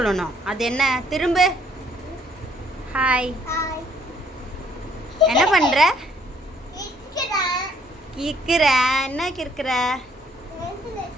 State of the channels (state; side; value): normal; both; correlation 0.64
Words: அது என்ன? திரும்ப. ஹாய். என்ன பண்ணுற? கிற்கிற. என்ன கிற்கிற?